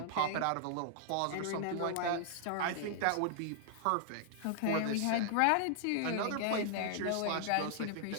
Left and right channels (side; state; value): both; different; correlation -0.01